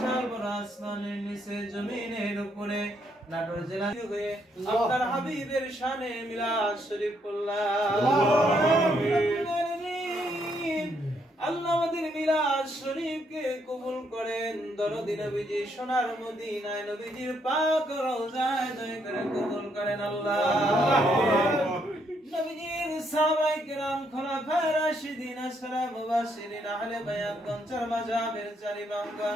বড় আসমানের নিচে জমিনের উপরে নাটোর জেলা হয়ে আপনার হাবিবের শানে মিলাদ শরীফ আল্লাহ আমাদের মিলাদ শরীফকে কবুল করেন। দরদি নবীজি সোনার মদিনায় নবীজির পাক রওজায় দয়া করে কবুল করেন আল্লাহ। নবীজির সাহাবায়ে কেরাম খোলাফায়ে রাশিদিন আসহাবে মুবাশশিরিন আহলে বায়াতগণ চার মাযহাবের চার ইমামগণ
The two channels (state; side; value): normal; both; correlation 0.74